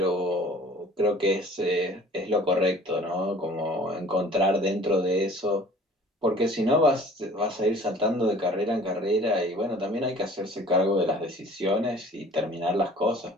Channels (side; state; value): both; normal; correlation 0.49